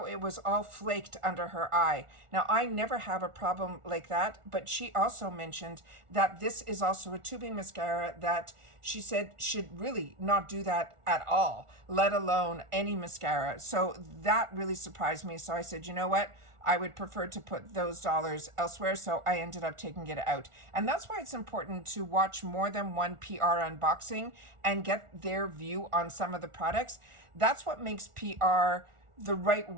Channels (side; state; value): left; late; 1.4 ms